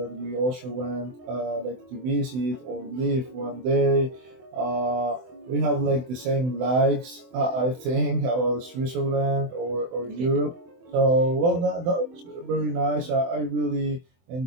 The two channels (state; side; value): late; left; 24 ms